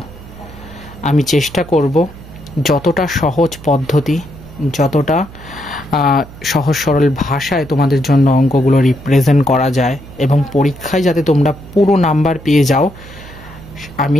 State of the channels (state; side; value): noise; right; hum, 18 dB below the sound